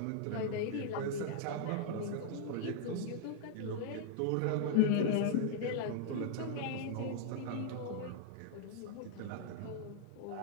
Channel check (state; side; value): different; both; correlation -0.01